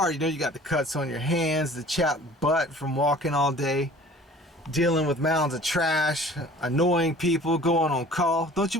You know, you got the cuts on your hands, the chapped butt from walking all day, dealing with mounds of trash, annoying people, going on call. Don't you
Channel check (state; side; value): normal; both; correlation 0.47